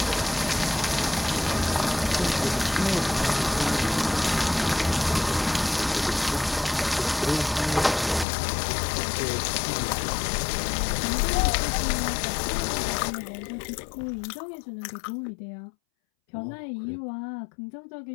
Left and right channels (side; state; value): right; drops out; at 8.2 s